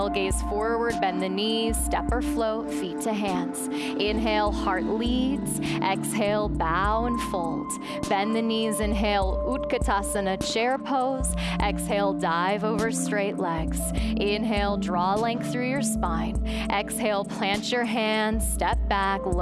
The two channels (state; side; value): identical; both; correlation 1.00